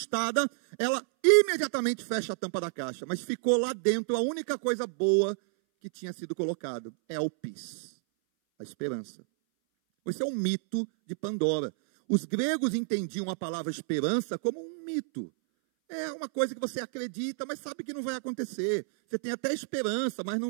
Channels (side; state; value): left; silent; 58 dB below the other